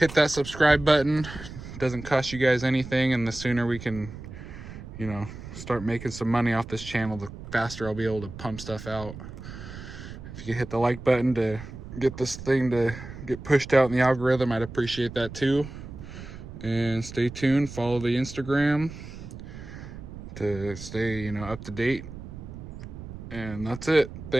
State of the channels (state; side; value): noise; right; rumble, 12 dB below the sound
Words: that subscribe button, it doesn't cost you guys anything, and the sooner we can, you know, start making some money off this channel, the faster I'll be able to pump stuff out. If you could hit the like button to get this thing to get pushed out in the algorithm, I'd appreciate that too. And stay tuned, follow the Instagram to stay, you know, up to date. And that's it.